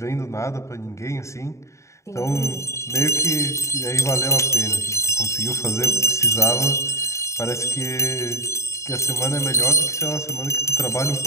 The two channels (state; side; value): late; right; 0.14 ms